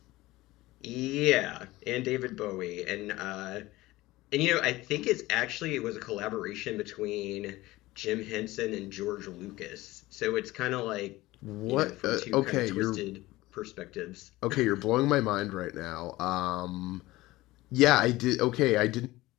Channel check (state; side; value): quieter; right; 18.6 dB